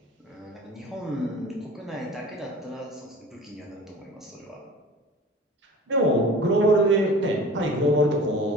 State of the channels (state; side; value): normal; both; correlation 0.41